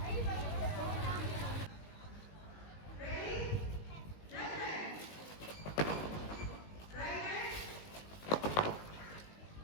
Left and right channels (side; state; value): right; late; 19 ms